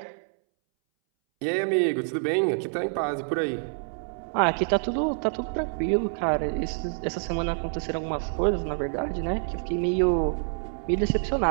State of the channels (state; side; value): silent; left; 60 dB below the other